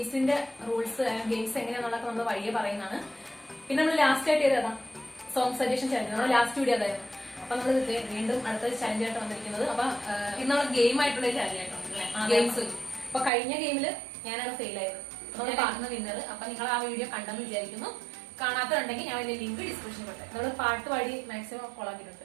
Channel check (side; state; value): left; drops out; at 13.3 s